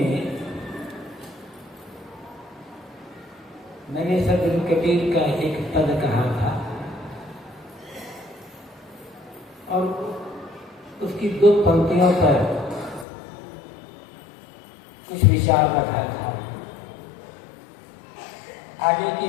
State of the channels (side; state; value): right; drops out; at 13.1 s